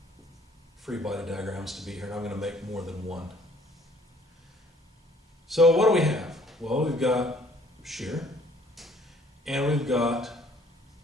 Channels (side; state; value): both; normal; correlation 0.58